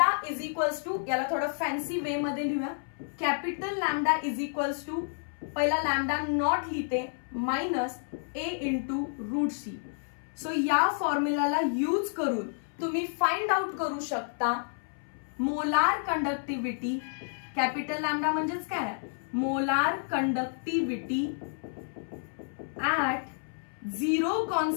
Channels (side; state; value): right; silent; 58 dB below the other